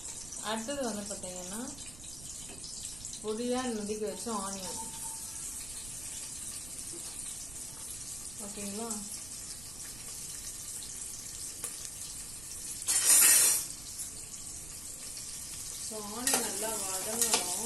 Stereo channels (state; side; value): noise; right; rumble, 14 dB below the sound